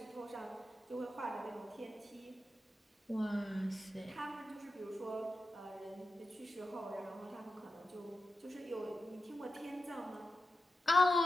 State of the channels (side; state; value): both; normal; correlation 0.90